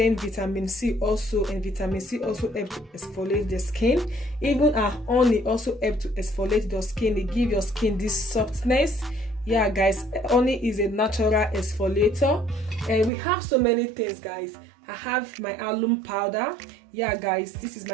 vitamin C also, and vitamin C also helps to exfoliate the skin. Even our honey also helps to exfoliate your skin. It gives your skin this softness. Yeah guys, honey is a natural exfoliator. And we have so many things guys. I have my alum powder. Yeah guys, this is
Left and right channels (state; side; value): drops out; left; at 13.1 s